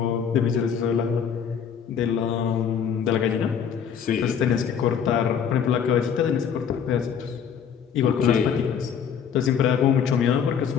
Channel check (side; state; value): right; quieter; 7.6 dB